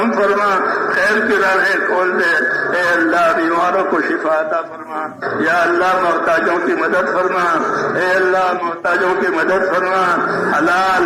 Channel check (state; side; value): identical; both; correlation 1.00